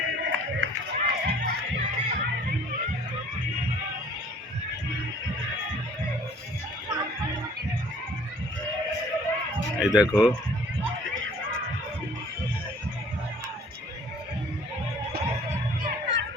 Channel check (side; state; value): both; normal; correlation 0.54